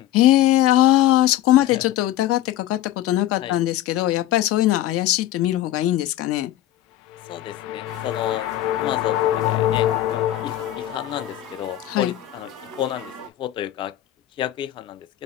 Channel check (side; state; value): right; quieter; 13.6 dB